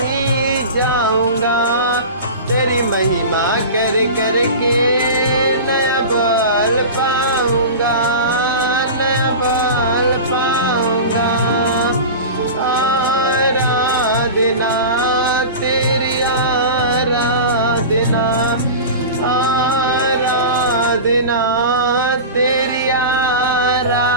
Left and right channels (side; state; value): both; inverted; correlation -0.31